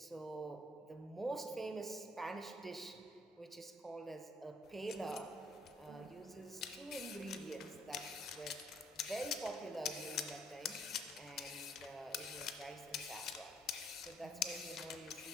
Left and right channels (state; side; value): normal; both; correlation 0.66